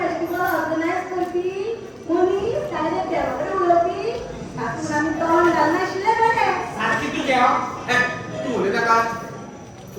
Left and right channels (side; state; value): both; identical; correlation 1.00